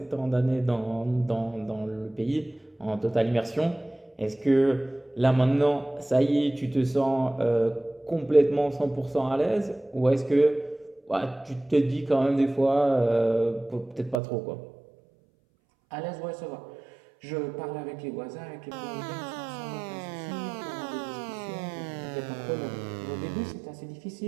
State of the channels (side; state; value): left; drops out; at 14.2 s